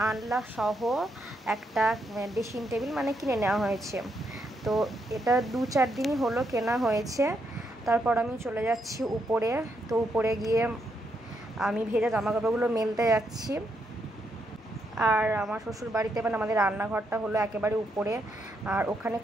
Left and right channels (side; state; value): both; normal; correlation 0.79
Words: আনলা সহ একটা ড্রেসিং টেবিল মানে কিনে নেওয়া হয়েছে। তো এটা 2-4 দিনই হলো কেনা হয়েছে। তারপর আমি চলে যাচ্ছি উপরে, তো উপরে গিয়ে আমি ভেজা জামাকাপড়গুলো মেলতে যাচ্ছি। আর আমার শ্বশুর বাড়িতে মানে আমাদের রান্নাঘরটা হলো একেবারে উপরে, আর ওখানে